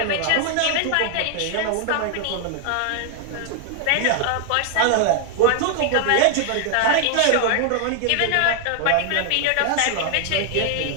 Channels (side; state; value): both; different; correlation 0.00